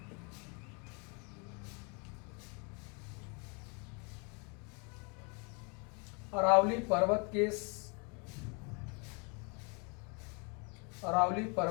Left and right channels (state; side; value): quieter; right; 33.8 dB